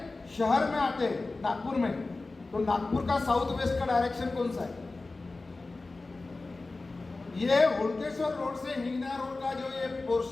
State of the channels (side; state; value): right; quieter; 3.4 dB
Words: शहर में आते हैं, नागपुर में, तो नागपुर का साउथ वेस्ट का डायरेक्शन कौन सा है? ये हुड़केश्वर रोड से हिंगना रोड का जो ये